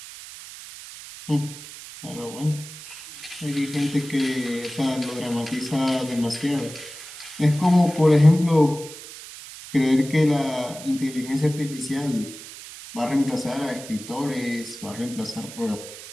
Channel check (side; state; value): right; noise; hiss, 14 dB below the sound